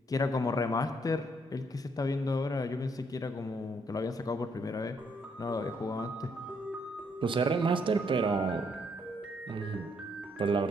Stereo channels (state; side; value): normal; both; correlation 0.71